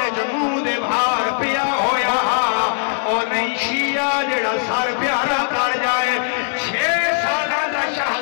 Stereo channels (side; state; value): right; silent; 65 dB below the other